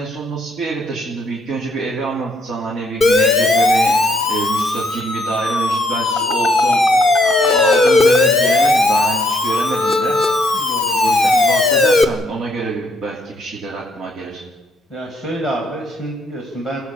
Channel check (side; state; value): both; normal; correlation 0.71